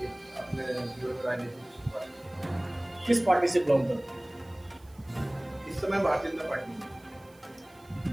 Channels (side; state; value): right; noise; hiss, 28 dB below the sound